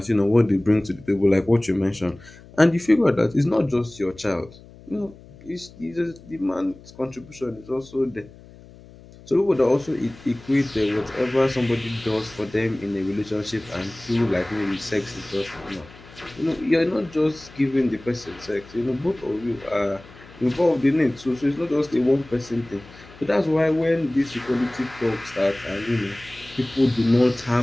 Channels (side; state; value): left; noise; hum, 21 dB below the sound